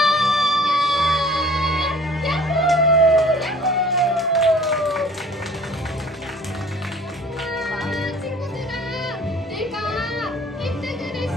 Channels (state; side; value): normal; both; correlation 0.50